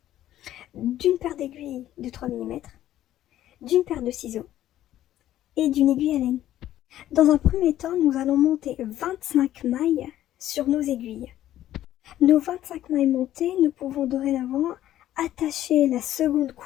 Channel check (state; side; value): quieter; right; 12.9 dB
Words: d'une paire d'aiguilles de 3 mm, d'une paire de ciseaux et d'une aiguille à laine. Dans un premier temps, nous allons monter 25 mailles sur nos aiguilles. Nos 25 mailles montées, nous pouvons dorénavant attacher la seconde